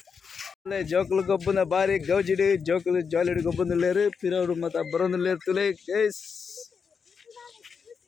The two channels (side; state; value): right; quieter; 5.9 dB